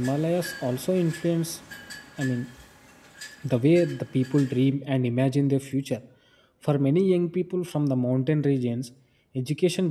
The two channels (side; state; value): both; identical; correlation 1.00